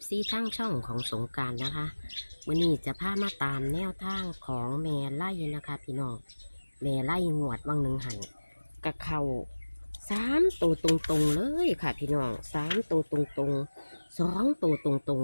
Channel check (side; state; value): both; inverted; correlation -1.00